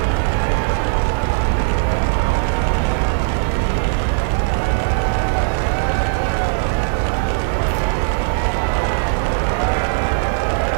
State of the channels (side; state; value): left; silent; digital silence